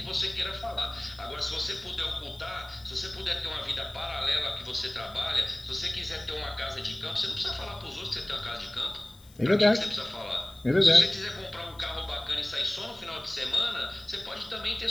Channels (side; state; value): left; noise; hiss, 25 dB below the sound